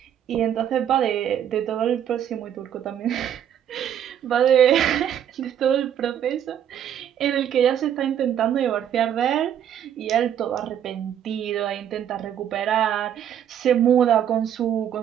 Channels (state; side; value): quieter; left; 9.7 dB